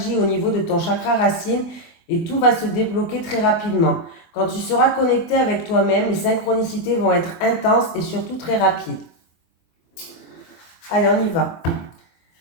au niveau de ton chakra racine et tout va se débloquer très rapidement. Quand tu seras connecté avec toi-même, les synchronicités vont être intenses et surtout très rapides. Allez, on y va.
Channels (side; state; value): right; late; 24 ms